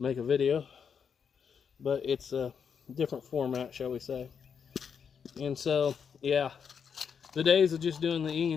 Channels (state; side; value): quieter; right; 6.9 dB